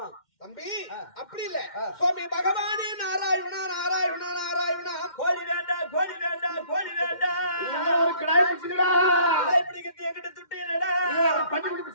தம்பி அப்படி இல்ல. சுவாமி பகவானே நாராயணா நாராயணா நாராயணா. கோழி வேண்டாம் கோழி வேண்டாம் கோழி வேண்டாம். ஒரு கடாய் பிடிச்சுடா. கடாய் பிடிக்கிறது என்கிட்ட துட்டு இல்லடா. பஞ்சு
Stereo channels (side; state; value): right; late; 2.1 ms